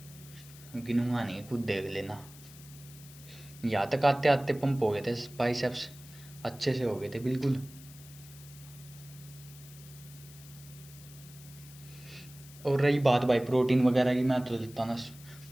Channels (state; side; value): noise; left; hiss, 20 dB below the sound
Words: गिनूंगा नहीं, खुद देख लेना। यहाँ तक आते आते पंप हो गए थे, बाइसेप्स अच्छे से हो गए थे बिल्कुल। और रही बात भाई प्रोटीन वगैरह की, मैं तो देता ना